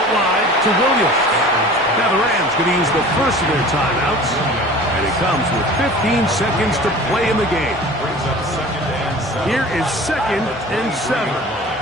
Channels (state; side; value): normal; both; correlation 0.42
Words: wide to Williams. Now the Rams going to use the first of their timeouts. And it comes with 15 seconds to play in the game. Here is 2nd and 7.